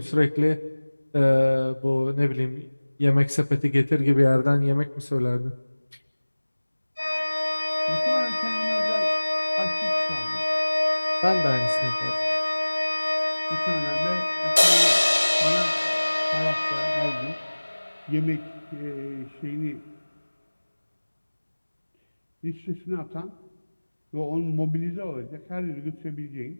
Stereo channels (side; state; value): both; inverted; correlation -1.00